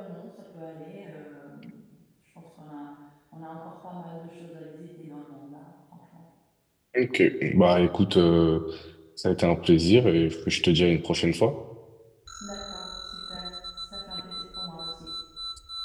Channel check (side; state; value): both; identical; correlation 1.00